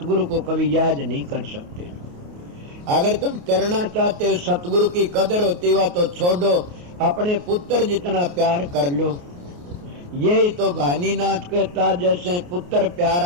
को कभी याद नहीं कर सकते। अगर तुम करना चाहते हो, सतगुरु की कदर होती हुआ तो छोड़ो, अपने पुत्र जितना प्यार कर लो। यही तो भानीनाथ कहता, जैसे पुत्र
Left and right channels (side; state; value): left; late; 28 ms